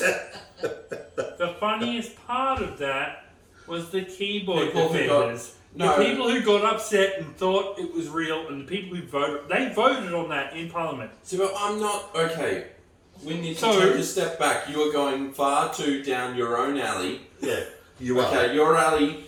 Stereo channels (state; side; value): identical; both; correlation 1.00